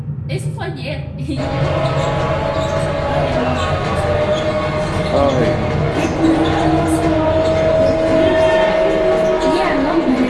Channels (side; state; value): both; identical; correlation 1.00